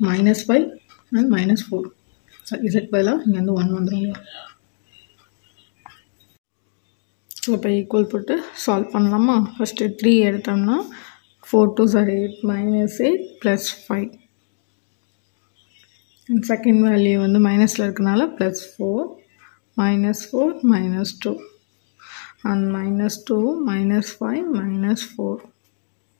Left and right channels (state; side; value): silent; right; 65 dB below the other